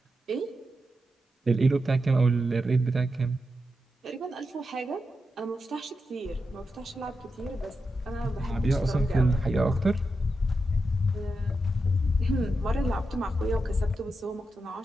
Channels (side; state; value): both; normal; correlation 0.88